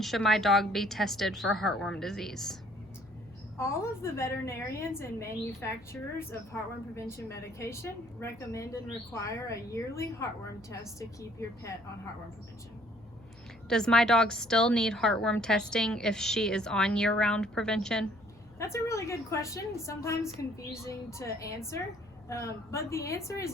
should my dog be tested for heartworm disease? All of the veterinarians and manufacturers of heartworm prevention medication recommend and require a yearly heartworm test to keep your pet on heartworm prevention. Does my dog still need heartworm testing if she is on year-round prevention? That's a really good question, sometimes confusing to answer, but the answer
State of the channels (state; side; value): noise; left; hum, 26 dB below the sound